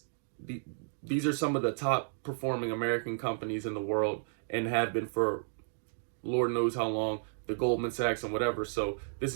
these are some of the top performing American companies in the world and have been for Lord knows how long, the Goldman Sachs and whatever. So this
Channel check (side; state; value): left; silent; digital silence